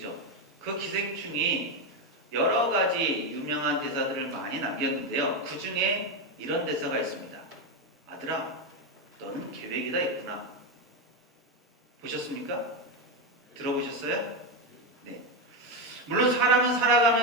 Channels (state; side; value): normal; both; correlation 0.10